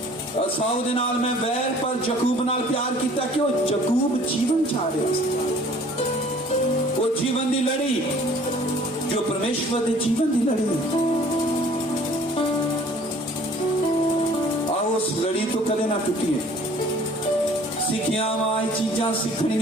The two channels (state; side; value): normal; both; correlation 0.53